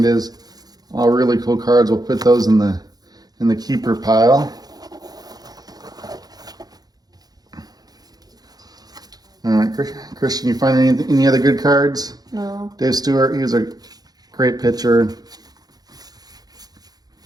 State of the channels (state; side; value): late; left; 0.19 ms